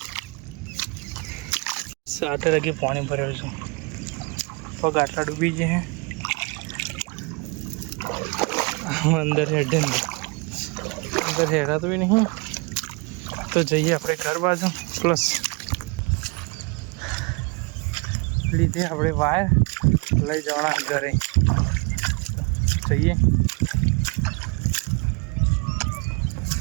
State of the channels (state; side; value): quieter; left; 29.5 dB